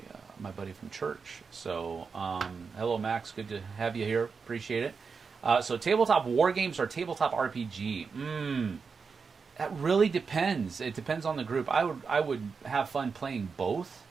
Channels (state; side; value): quieter; left; 5.3 dB